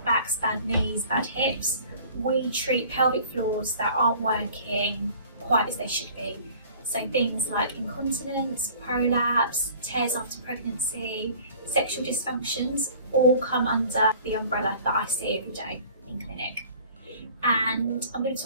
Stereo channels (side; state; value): both; inverted; correlation -0.49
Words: backs, bad knees, bad hips. We treat pelvic floors that aren't working quite as they should be. So things like incontinence, prolapse, tears after pregnancy, sexual dysfunctions all come under the umbrella that I see every day in clinic. And I'm going to